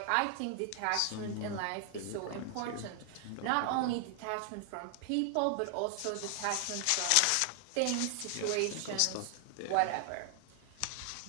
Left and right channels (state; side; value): different; both; correlation 0.00